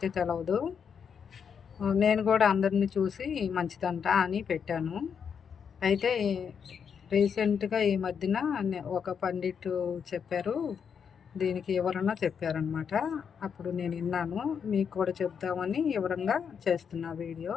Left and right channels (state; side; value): quieter; right; 7.0 dB